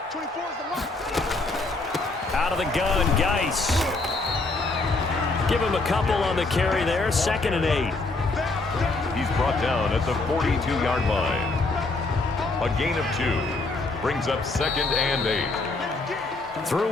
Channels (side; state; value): right; quieter; 3.3 dB